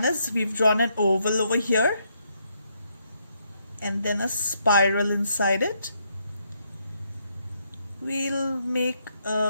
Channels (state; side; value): inverted; both; correlation -0.76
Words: is we've drawn an oval over here and then a spiral inside it. We'll make